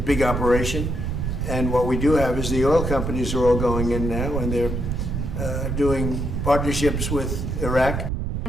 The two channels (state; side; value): noise; right; rumble, 2 dB below the sound